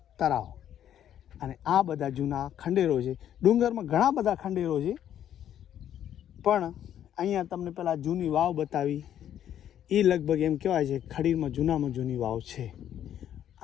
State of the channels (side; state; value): right; quieter; 10.5 dB